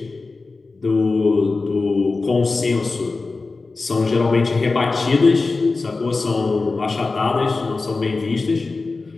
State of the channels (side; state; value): right; quieter; 3.8 dB